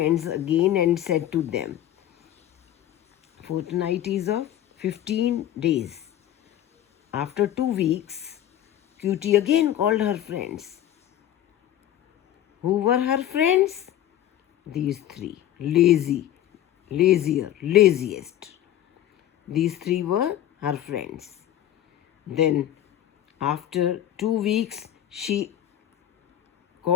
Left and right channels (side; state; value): right; quieter; 11.8 dB